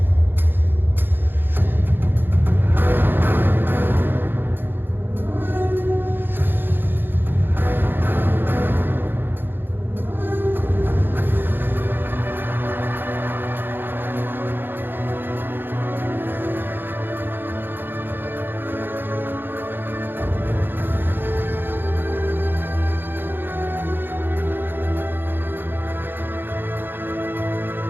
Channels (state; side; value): late; left; 0.099 ms